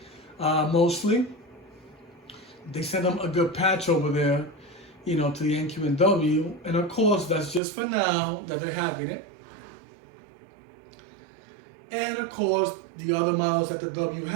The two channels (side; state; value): left; drops out; at 7.6 s